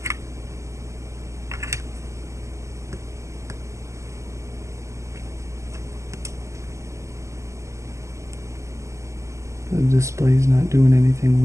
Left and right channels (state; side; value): late; left; 0.14 ms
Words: The display's not doing anything